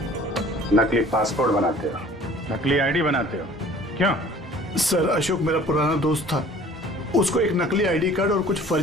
नकली पासपोर्ट बनाते हो, नकली आईडी बनाते हो, क्यों? सर अशोक मेरा पुराना दोस्त था, उसको एक नकली आईडी कार्ड और कुछ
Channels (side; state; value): both; normal; correlation 0.50